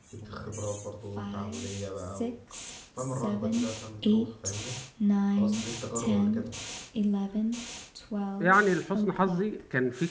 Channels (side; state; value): both; identical; correlation 1.00